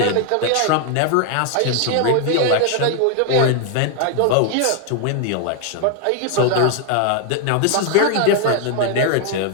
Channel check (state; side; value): different; both; correlation 0.00